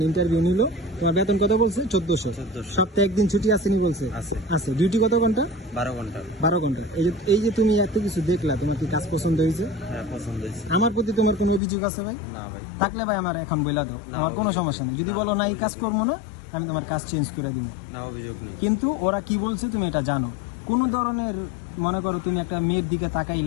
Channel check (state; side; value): drops out; right; at 11.6 s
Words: ইন্টারভিউ নিল। তোমার বেতন কত বলছে? 1400। সপ্তাহে একদিন ছুটি আসেনি বলছে? আছে। ডিউটি কত ঘন্টা? 12 ঘন্টা। 12 ঘন্টা। এই যে তুমি এত কিছু দেখলা, তোমার কি কাজ পছন্দ হয়েছে? হ্যাঁ, পছন্দ হয়েছে। আমার প্রতি তোমার কোনো অভিযোগ আছে ভাই? না ভাই। থাকলে ভাই আমার এখন বলে দাও, আমার কোনো সমস্যা নেই। যদি বলো না এই কাজ করবো না, আমি তোমার কাজ চেঞ্জ করে দিব। না, অভিযোগ নেই। কিন্তু ওরা কি বলছে তুমি এটা জানো। কোনো ধরনের মনে করো তুমি একটা মেয়ের দিকে